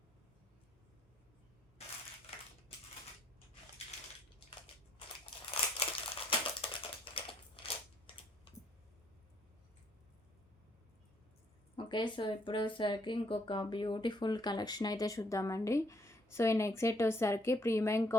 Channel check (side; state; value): both; normal; correlation 0.68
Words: Okay. So, ఇప్పుడు వచ్చేసరికి ఇంకొక బ్యూటిఫుల్ కలెక్షన్ అయితే చూద్దామండి. సో ఈ నెక్ సెట్ వచ్చేసరికి ప్రీమియం